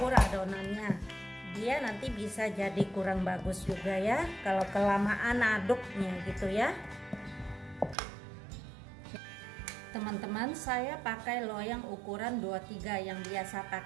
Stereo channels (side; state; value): left; drops out; at 8.0 s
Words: adonannya, dia nanti bisa jadi kurang bagus juga ya kalau kelamaan aduknya gitu ya. Teman-teman, saya pakai loyang ukuran 23 yang biasa